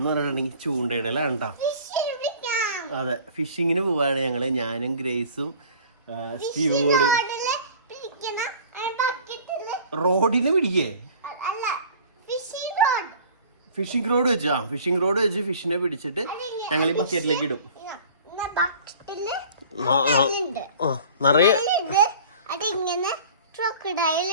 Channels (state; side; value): inverted; both; correlation -0.46